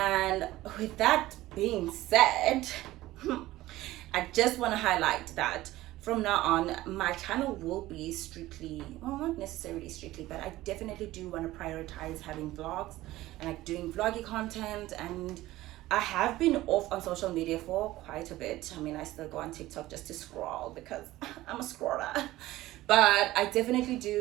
with that being said, I just want to highlight that from now on, my channel will be strictly, well, not necessarily strictly, but I definitely do want to prioritize having vlogs and like doing vloggy content. And I have been off on social media for quite a bit. I mean, I still go on TikTok just to scroll because I'm a scroller. But I definitely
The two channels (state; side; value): quieter; left; 16.7 dB